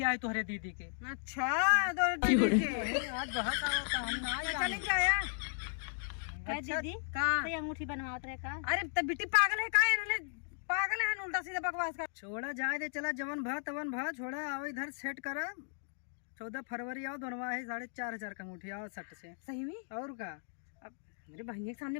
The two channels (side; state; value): right; silent; digital silence